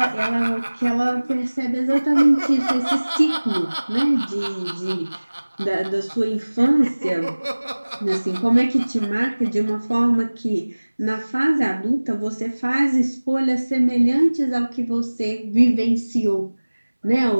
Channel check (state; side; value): inverted; both; correlation -1.00